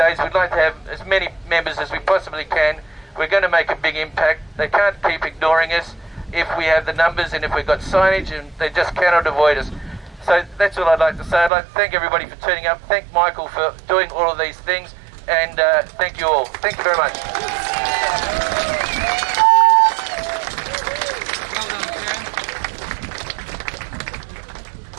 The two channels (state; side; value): drops out; left; at 11.5 s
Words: We'd like to have as many members as we possibly can. We're going to make a big impact. They can't keep ignoring us if we have the numbers and if we've got signage, and they just cannot avoid us. So that's all I'd like to say. I'd like to thank everybody for turning up. Thank Michael for doing all of these things, and thank you all. Thank you very much.